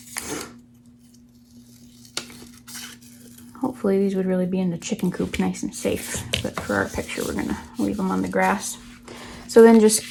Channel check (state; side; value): identical; both; correlation 1.00